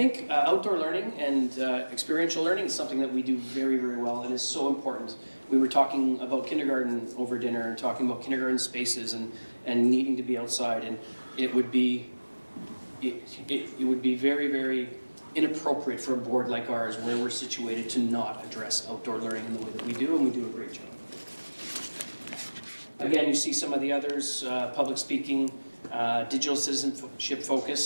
outdoor learning and experiential learning is something that we do very, very well and is so important. We were talking about kindergarten over dinner and talking about kindergarten spaces and needing to be outside, and it would be very, very inappropriate for a board like ours where we're situated to not address outdoor learning in the way that we do, and we do a great job. Again, you see some of the others, public speaking, digital citizenship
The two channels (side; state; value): both; inverted; correlation -1.00